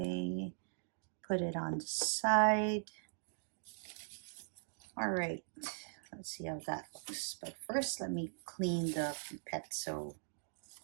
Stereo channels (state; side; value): silent; left; digital silence